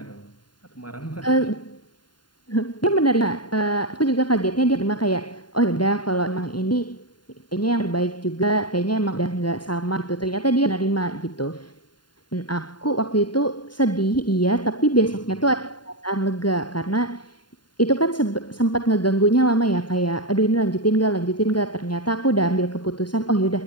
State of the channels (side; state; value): right; late; 0.71 ms